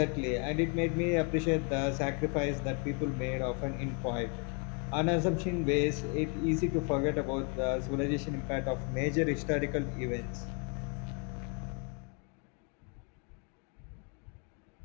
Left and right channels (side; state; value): right; quieter; 36.6 dB